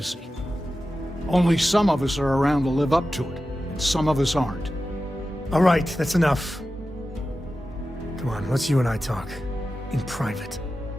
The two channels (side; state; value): both; normal; correlation 0.93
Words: Only some of us are around to live up to it, and some of us aren't. All right, that's enough. Come on, let's you and I talk. In private.